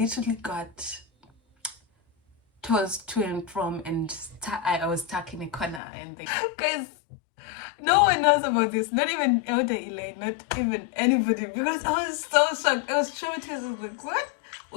got tossed to and from, and I was stuck in a corner. And guys, no one knows about this. Not even Elder Elaine, not even anybody. Because I was so shocked. I was traumatized. I was like, what?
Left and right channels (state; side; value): drops out; right; at 5.8 s